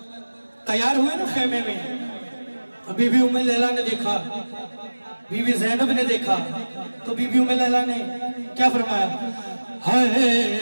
तैयार हुए ना खेमे में, तो बीबी उम्मे लैला ने देखा, बीबी ज़ैनब ने देखा, तो बीबी उम्मे लैला ने क्या फरमाया, हाय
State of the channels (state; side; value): inverted; both; correlation -1.00